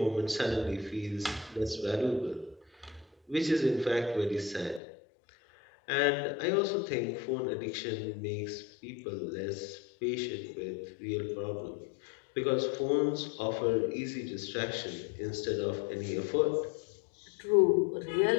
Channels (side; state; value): right; drops out; at 4.8 s